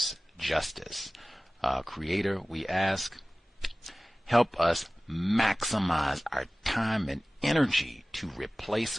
justice. Creator, we ask, help us maximize our time and energy to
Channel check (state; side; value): normal; both; correlation 0.98